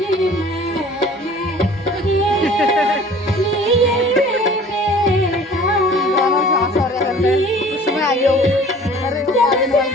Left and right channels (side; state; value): both; normal; correlation 0.48